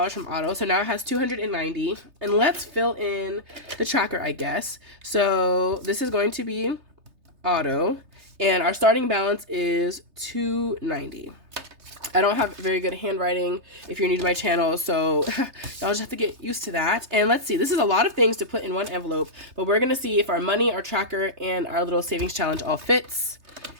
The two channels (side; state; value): left; late; 3.3 ms